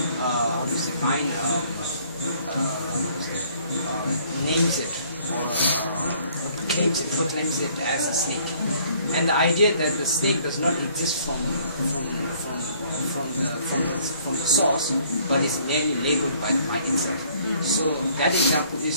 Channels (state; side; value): inverted; both; correlation -0.60